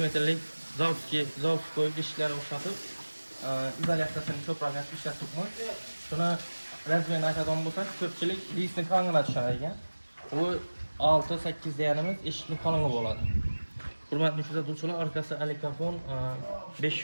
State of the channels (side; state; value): both; inverted; correlation -1.00